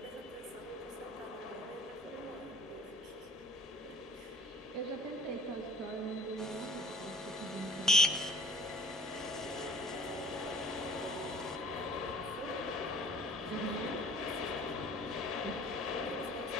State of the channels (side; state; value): both; normal; correlation 0.52